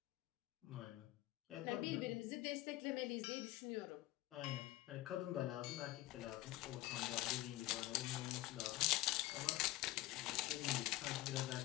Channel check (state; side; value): quieter; right; 17.1 dB